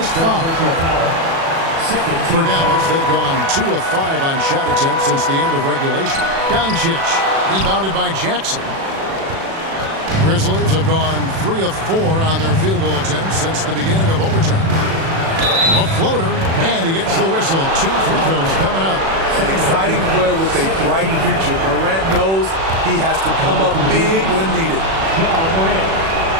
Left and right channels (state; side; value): late; left; 36 ms